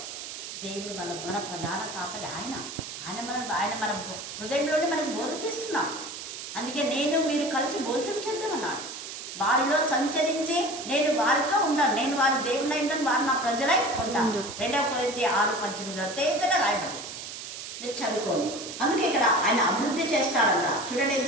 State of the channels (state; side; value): noise; right; hiss, 9 dB below the sound